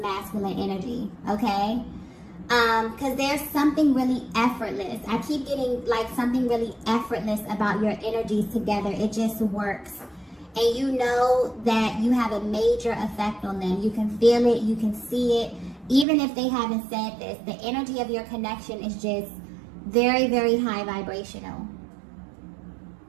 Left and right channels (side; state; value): left; drops out; at 16.1 s